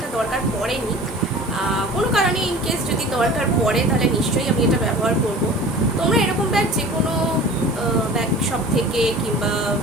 দরকার পড়েনি। কোনো কারণে ইনকেস যদি দরকার পড়ে তাহলে নিশ্চয়ই আমি এটা ব্যবহার করব। তোমরা এরকম ব্যাগ যে কোনো ব্যাগ শপ থেকে কিংবা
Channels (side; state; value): both; normal; correlation 0.41